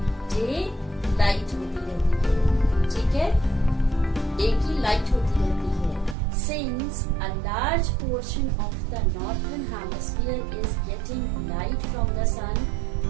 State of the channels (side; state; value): left; drops out; at 6.2 s